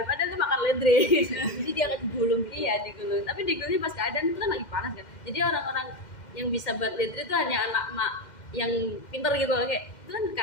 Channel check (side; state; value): right; late; 2.1 ms